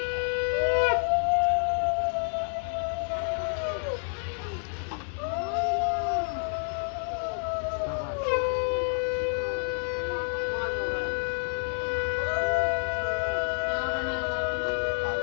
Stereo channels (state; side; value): silent; right; digital silence